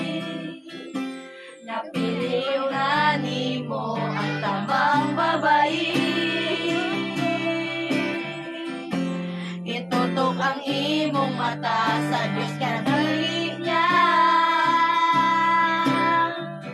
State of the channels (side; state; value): both; identical; correlation 1.00